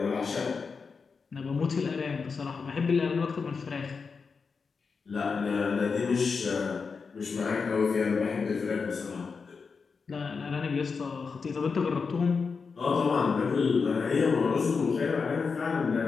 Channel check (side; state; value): right; quieter; 5.1 dB